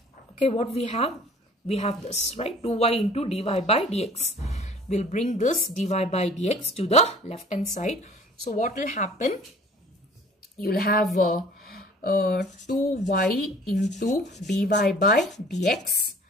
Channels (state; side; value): normal; both; correlation 0.50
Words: okay, what we have this, right? 2y into dy by dx. We'll bring this dy by dx to the left hand side. So what will happen? You'll have 2y into dy by dx,